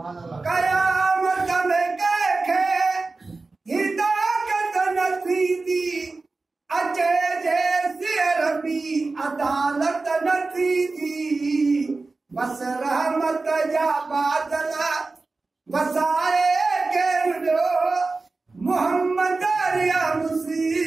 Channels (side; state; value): left; quieter; 3.7 dB